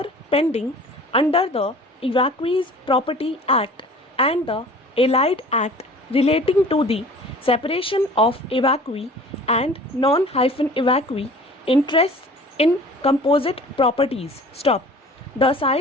pending under the Evacuees Property Act and the Allied Act relating to the separation of evacuee and non-evacuee interests in composite properties. Stop. The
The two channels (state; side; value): normal; both; correlation 0.45